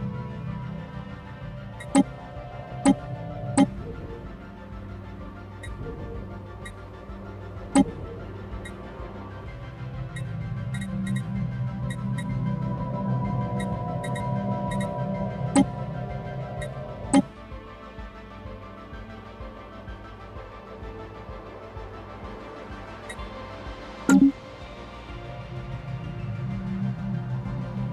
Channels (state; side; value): identical; both; correlation 1.00